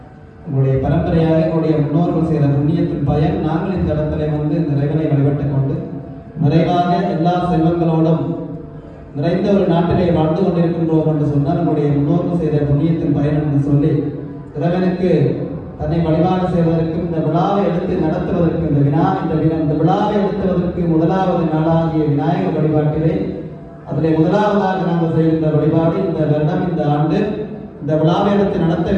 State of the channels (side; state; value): both; identical; correlation 1.00